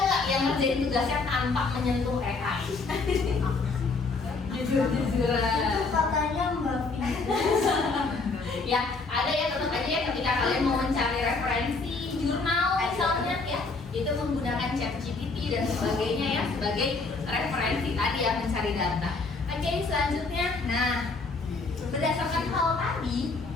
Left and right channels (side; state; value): right; quieter; 3.9 dB